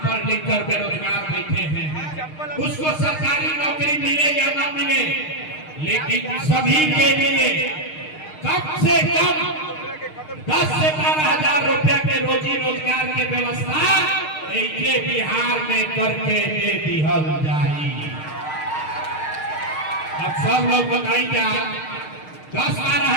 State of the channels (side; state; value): right; late; 6.5 ms